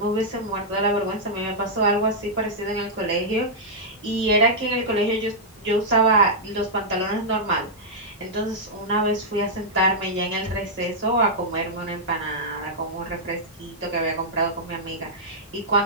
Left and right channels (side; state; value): both; normal; correlation -0.08